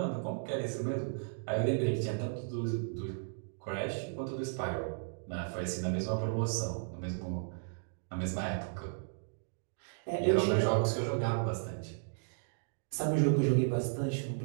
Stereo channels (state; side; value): silent; left; digital silence